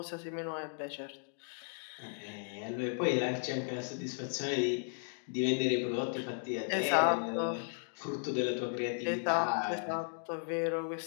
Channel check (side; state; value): right; silent; digital silence